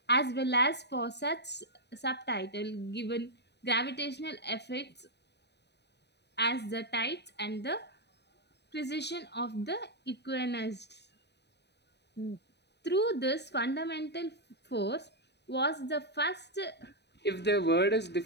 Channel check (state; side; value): late; right; 0.50 ms